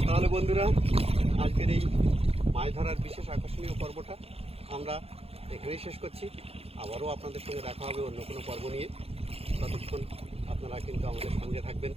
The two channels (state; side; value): late; left; 0.29 ms